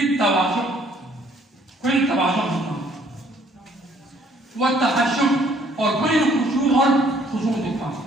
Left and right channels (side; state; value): both; normal; correlation 0.62